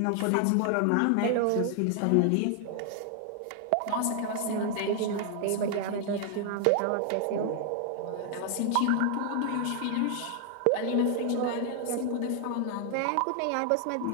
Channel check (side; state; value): both; different; correlation 0.00